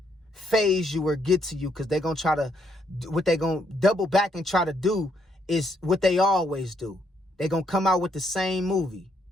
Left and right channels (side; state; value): both; normal; correlation 0.73